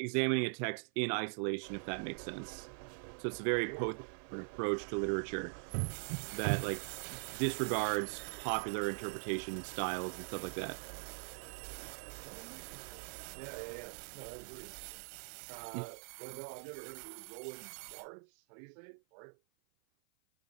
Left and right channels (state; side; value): silent; left; 50 dB below the other